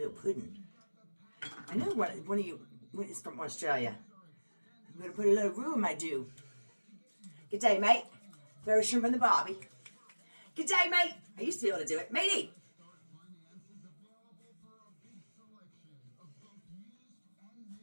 pudding. I know one of you is from Australia. I'm going to put a little roux in my dew. Good day, mate. Throw a shrimp on the barbie. Good day, mate. I used to be able to do it. Matey.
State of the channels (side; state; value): both; inverted; correlation -1.00